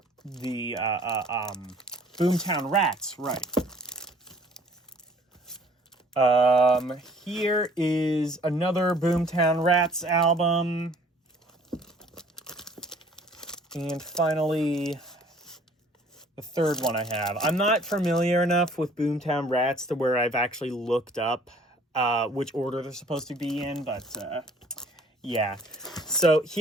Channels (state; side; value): normal; both; correlation 0.55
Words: Boomtown Rats, right. Here is another Boomtown Rats album. And finally, the third one I have. I'm not familiar enough with Boomtown Rats to where I've actually looked up which order they're supposed to be in, but yeah. So